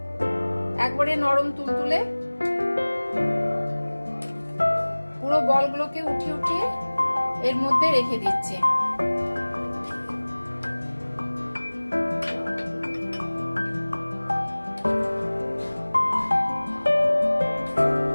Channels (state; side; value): inverted; both; correlation -1.00